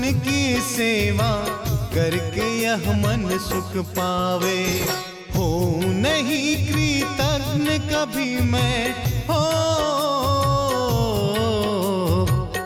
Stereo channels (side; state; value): both; identical; correlation 1.00